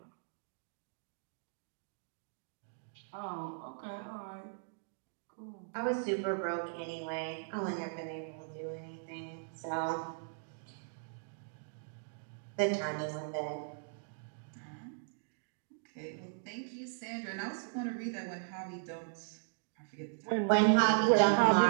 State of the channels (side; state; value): left; silent; digital silence